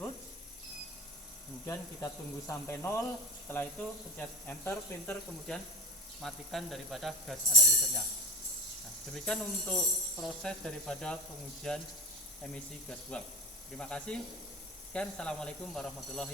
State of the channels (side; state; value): both; normal; correlation 0.31